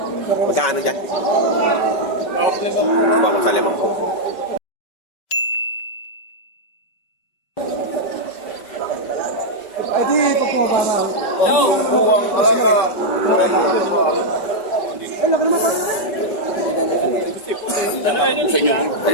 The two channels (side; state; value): right; late; 5.1 ms